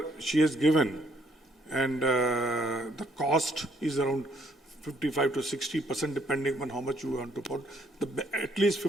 she has given, and the cost is around 55 to 60%, depending on how much you want to put. At least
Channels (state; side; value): normal; both; correlation 0.67